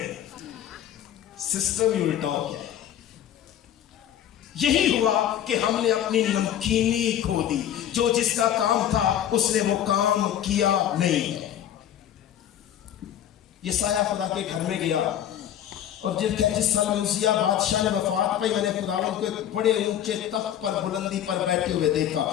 सिस्टम ही उल्टा हो गया। यही हुआ कि हमने अपनी नमकीनी खो दी, जो जिसका काम था उसने वो काम किया नहीं है। यसाया खुदा के घर में गया, और जिस साल में उसिया बादशाह ने वफात पाई, मैंने खुदावंद को एक बड़े ऊंचे तख्त पर बुलंदी पर बैठे हुए देखा।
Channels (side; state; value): right; quieter; 10.6 dB